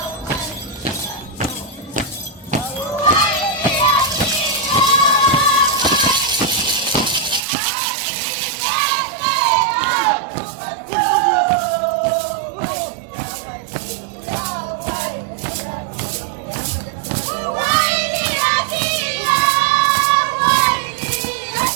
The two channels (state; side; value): drops out; left; at 7.4 s